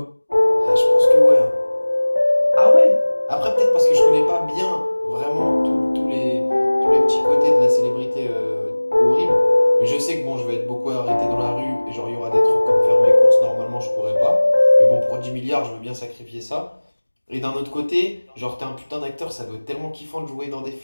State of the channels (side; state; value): both; inverted; correlation -1.00